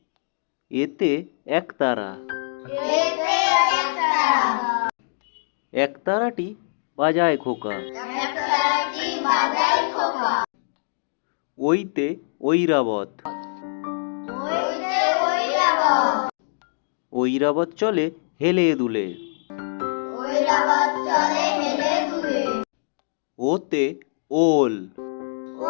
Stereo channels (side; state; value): right; silent; digital silence